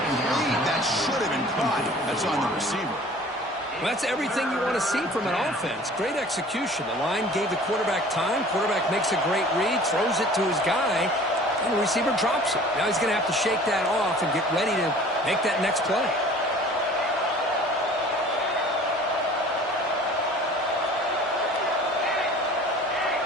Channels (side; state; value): both; normal; correlation 0.47